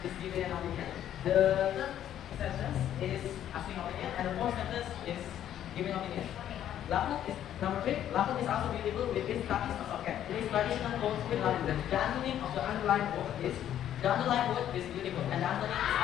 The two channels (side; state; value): right; quieter; 11.0 dB